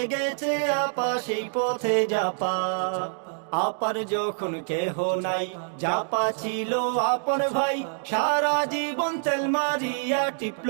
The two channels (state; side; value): silent; left; digital silence